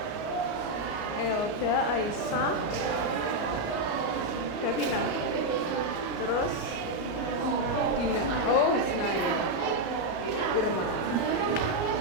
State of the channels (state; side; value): late; right; 34 ms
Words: Elda, Aisyah, Davina. Terus Dina. Oh, Ismail. Irma.